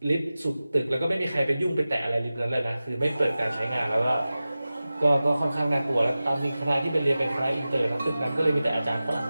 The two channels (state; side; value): inverted; both; correlation -0.96